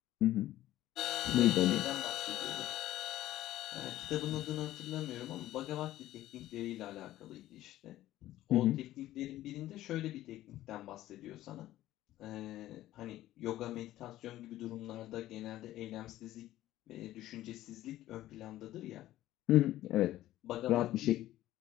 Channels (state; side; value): quieter; right; 14.6 dB